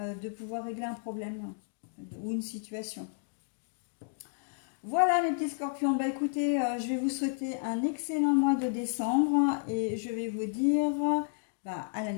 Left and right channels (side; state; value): right; silent; digital silence